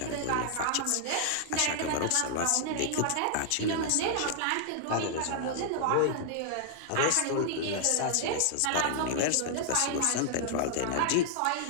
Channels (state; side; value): different; both; correlation -0.01